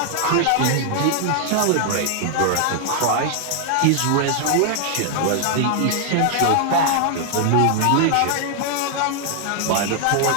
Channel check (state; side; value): different; both; correlation 0.00